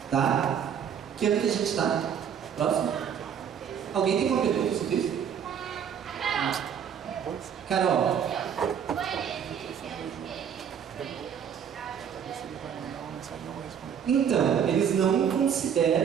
Tá? Que ano que a gente está? Próximo? Alguém tem uma pergunta sobre isso? Carol. Então, eles não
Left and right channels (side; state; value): left; quieter; 8.1 dB